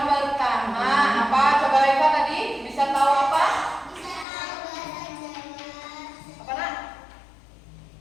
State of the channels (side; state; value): right; drops out; at 4.2 s